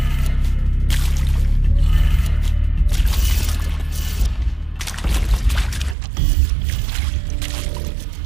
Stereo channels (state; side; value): drops out; left; at 6.0 s